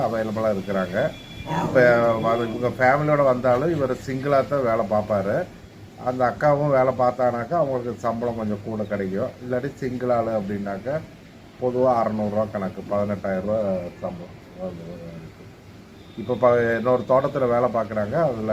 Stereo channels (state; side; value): identical; both; correlation 1.00